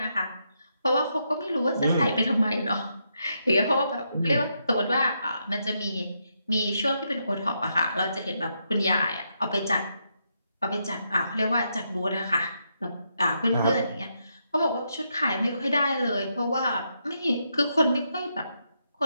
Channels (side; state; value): both; inverted; correlation -0.80